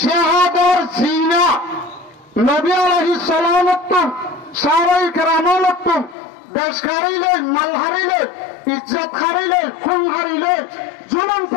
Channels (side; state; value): right; drops out; at 6.2 s